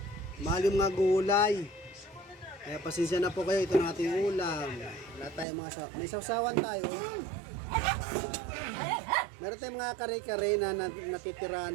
Mahal yung mga gulay. Kaya pasensya na po kayo, ito na ating ulam. Wala tayong mga may sausawan tayo. Meron tayong mga kare-kare na natitira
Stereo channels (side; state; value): left; drops out; at 5.5 s